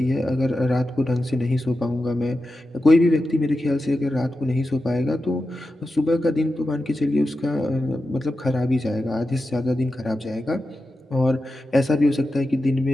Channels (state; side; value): normal; both; correlation 0.91